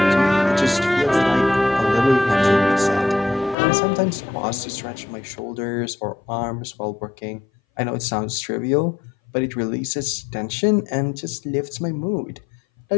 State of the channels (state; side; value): drops out; right; at 3.6 s